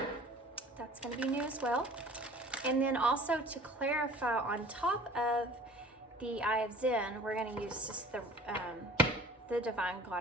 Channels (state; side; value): normal; both; correlation 0.47